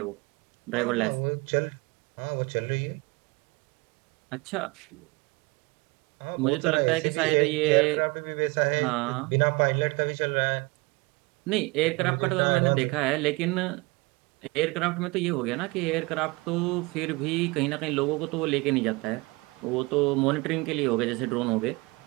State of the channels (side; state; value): left; quieter; 25.8 dB